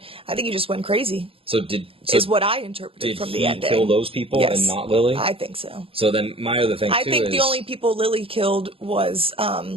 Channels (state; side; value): late; left; 0.27 ms